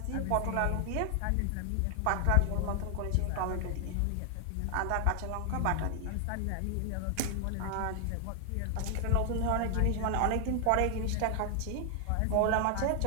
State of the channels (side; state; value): both; different; correlation 0.00